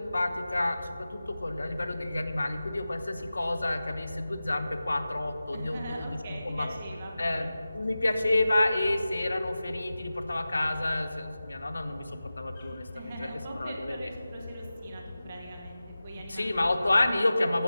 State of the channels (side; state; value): both; inverted; correlation -0.95